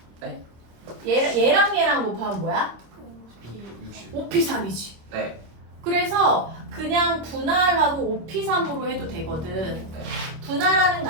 네. 얘랑 곱하면 뭐야? 60 5P3이지. 네. 그래서 그냥 분할하고 5P3으로 해도 되거든. 분할하는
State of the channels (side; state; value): left; late; 25 ms